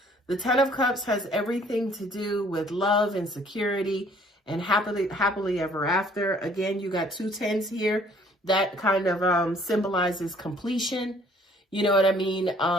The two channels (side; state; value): both; normal; correlation 0.58